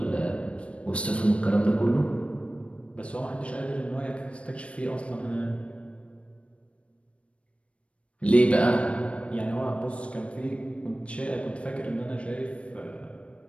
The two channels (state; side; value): late; right; 0.061 ms